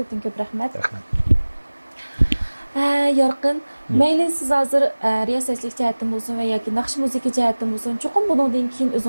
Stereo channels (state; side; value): inverted; both; correlation -1.00